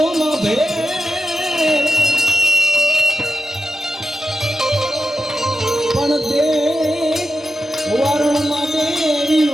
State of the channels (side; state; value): both; normal; correlation 0.89